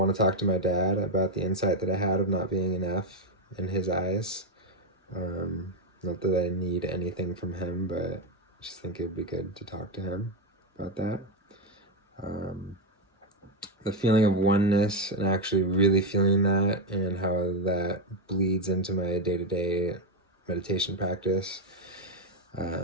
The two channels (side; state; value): both; normal; correlation 0.07